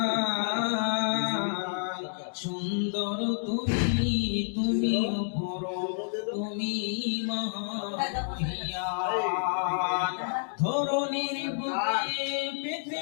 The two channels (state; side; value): silent; right; digital silence